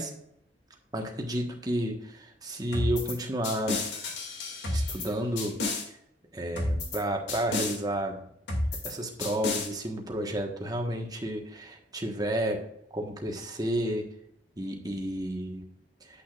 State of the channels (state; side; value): normal; both; correlation 0.62